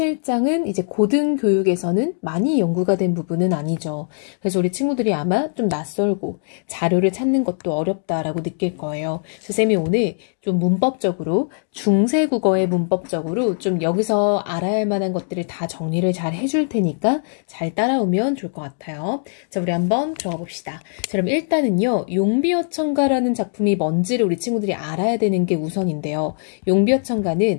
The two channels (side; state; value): right; silent; digital silence